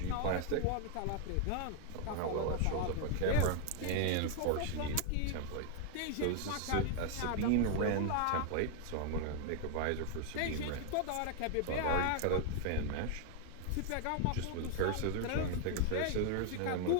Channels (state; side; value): different; both; correlation 0.00